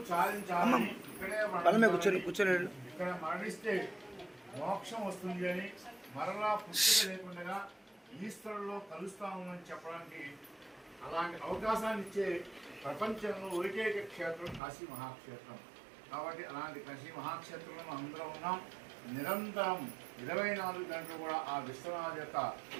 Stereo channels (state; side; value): drops out; left; at 14.6 s